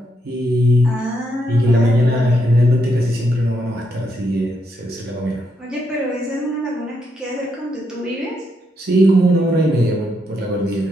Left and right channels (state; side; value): normal; both; correlation 0.79